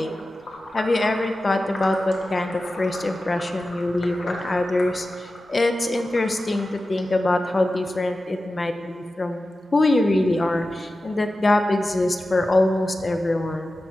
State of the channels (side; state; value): both; normal; correlation 0.94